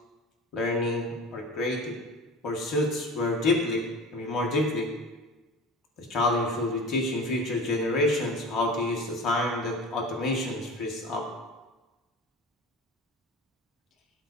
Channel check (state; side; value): normal; both; correlation 0.35